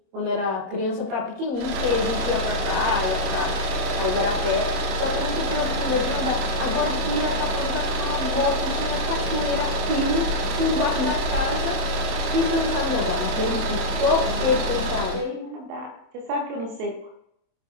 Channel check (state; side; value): late; left; 27 ms